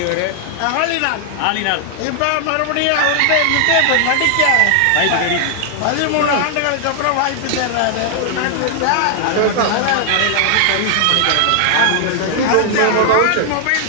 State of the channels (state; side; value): different; both; correlation 0.00